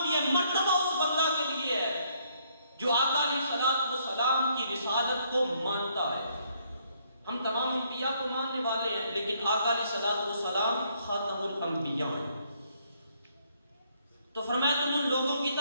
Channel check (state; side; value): inverted; both; correlation -0.69